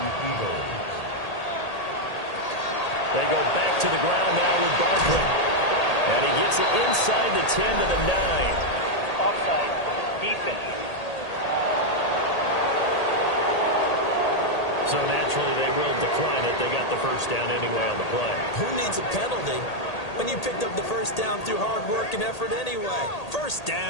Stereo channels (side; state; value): right; late; 1.8 ms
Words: Eagles. They go back to the ground now with Barkley. And he gets it inside the 10 to the 9. Offside. Defense. So naturally they will decline it. They got the first down anyway on the play. Who needs a penalty when you picked up the first down through hard work and effort anyway? First